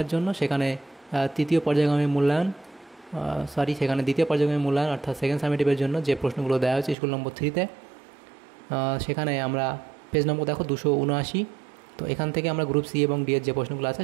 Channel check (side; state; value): left; drops out; at 7.0 s